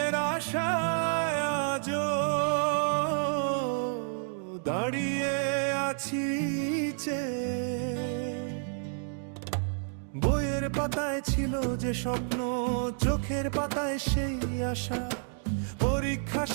আশায় আজও দাঁড়িয়ে আছি চেয়ে। বইয়ের পাতায় ছিল যে স্বপ্ন, চোখের পাতায় সেই আশা। পরীক্ষা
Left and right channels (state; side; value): silent; left; 58 dB below the other